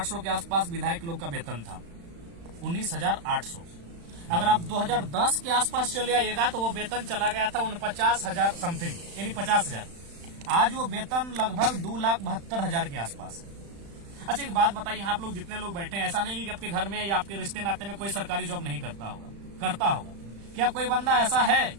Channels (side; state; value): left; late; 35 ms